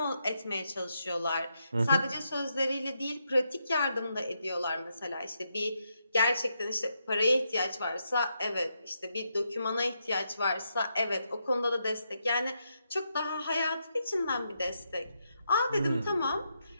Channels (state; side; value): inverted; both; correlation -0.81